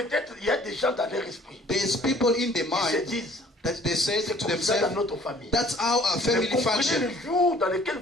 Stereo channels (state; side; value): normal; both; correlation 0.55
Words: il y a des gens dans leur esprit there's people in their qui se mind disent, that they say c'est to comme ça dans themselves, notre famille. that's how our Mais family comprenez function. le jour dans lequel